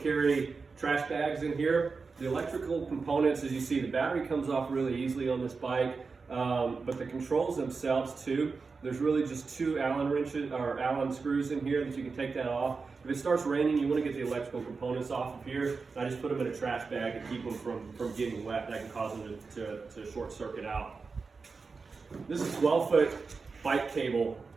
trash bags in here. The electrical components, as you see, the battery comes off really easily on this bike, but the controls themselves too. There's really just 2 Allen wrenches or Allen screws in here that you can take that off. If it starts raining, you want to get the electrical components off of here. I just put them in a trash bag to keep them from getting wet. That can cause them to short circuit out. This is 12-foot bike cable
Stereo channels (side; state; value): left; quieter; 4.6 dB